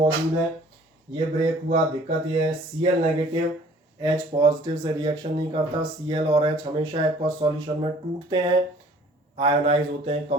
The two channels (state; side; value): normal; both; correlation 0.54